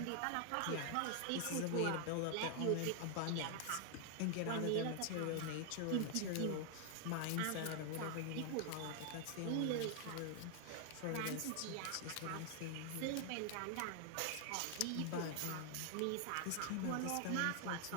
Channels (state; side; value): different; both; correlation 0.00